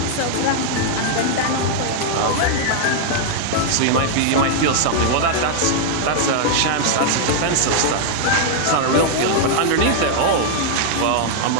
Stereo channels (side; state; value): both; different; correlation -0.01